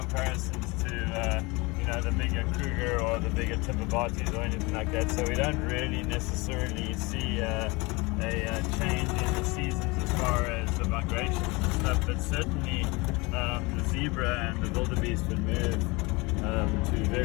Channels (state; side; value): quieter; right; 25.3 dB